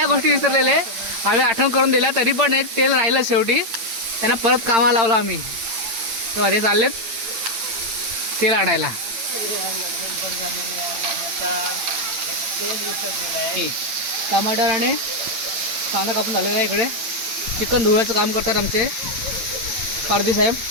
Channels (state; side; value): late; left; 9.0 ms